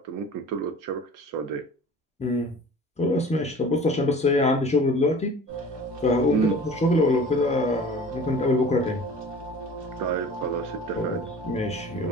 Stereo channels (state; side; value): normal; both; correlation 0.43